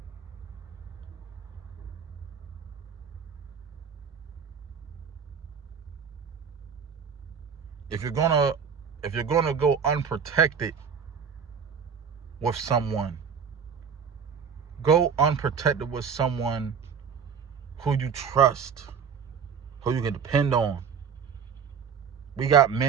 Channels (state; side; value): quieter; left; 6.8 dB